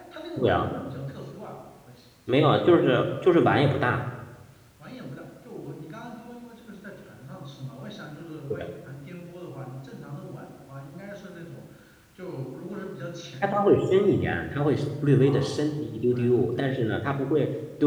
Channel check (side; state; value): both; identical; correlation 1.00